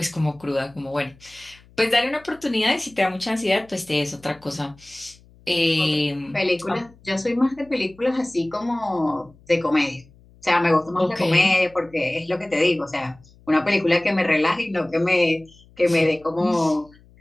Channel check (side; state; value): left; noise; hum, 27 dB below the sound